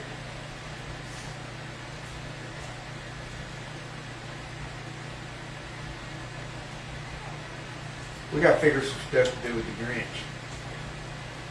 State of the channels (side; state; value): both; identical; correlation 1.00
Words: We got to figure some stuff to do with the Grinch.